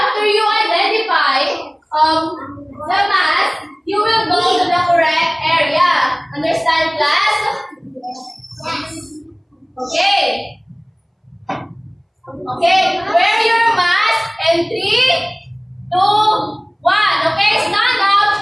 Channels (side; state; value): both; identical; correlation 1.00